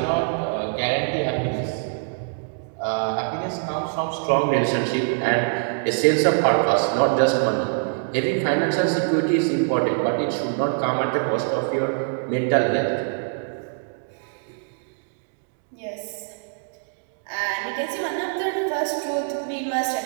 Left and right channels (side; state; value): left; silent; digital silence